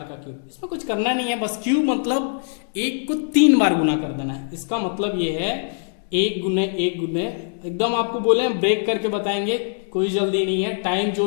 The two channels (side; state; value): right; silent; digital silence